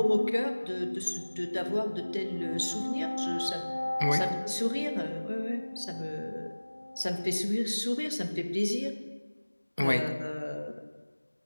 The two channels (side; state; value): both; inverted; correlation -1.00